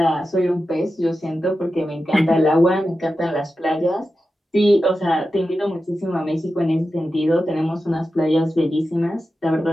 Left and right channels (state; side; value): normal; both; correlation 0.92